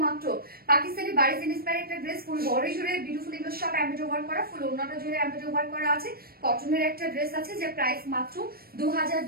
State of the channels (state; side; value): late; left; 0.44 ms